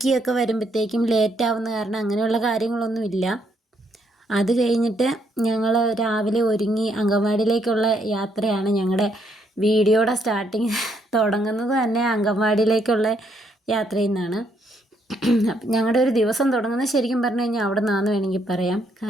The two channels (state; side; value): normal; both; correlation 0.73